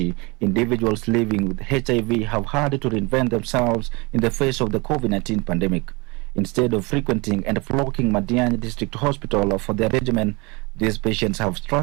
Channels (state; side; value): quieter; left; 26.8 dB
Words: individuals living with HIV have had to reinvent themselves in the face of the COVID-19 pandemic. Instead of frequenting and flocking Madiani District Hospital for their regimen, these patients have